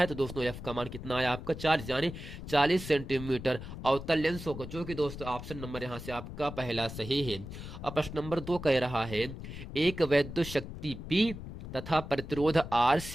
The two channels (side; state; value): left; noise; rumble, 10 dB below the sound